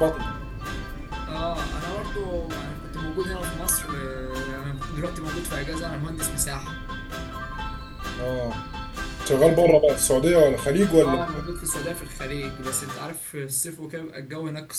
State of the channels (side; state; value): both; identical; correlation 1.00